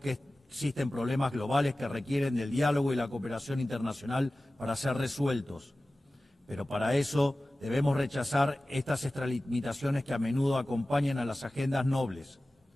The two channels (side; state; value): both; normal; correlation 0.96